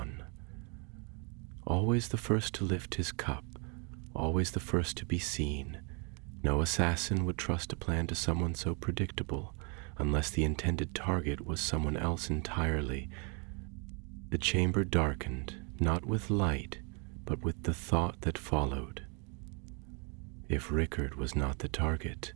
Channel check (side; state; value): left; quieter; 35.0 dB